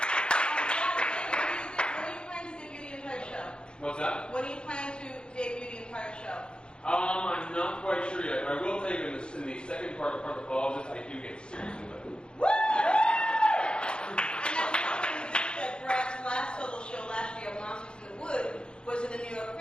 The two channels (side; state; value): right; late; 0.052 ms